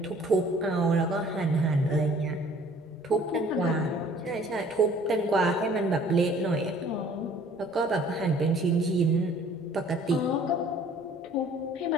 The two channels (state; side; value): normal; both; correlation 0.54